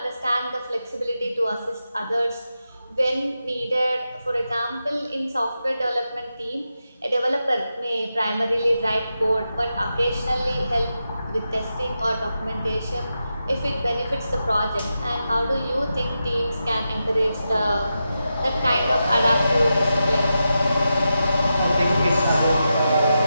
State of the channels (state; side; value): inverted; both; correlation -0.89